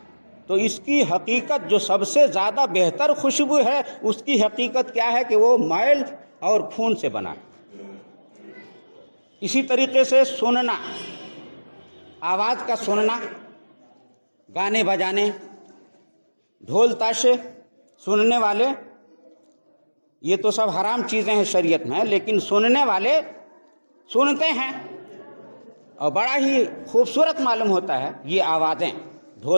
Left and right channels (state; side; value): inverted; both; correlation -1.00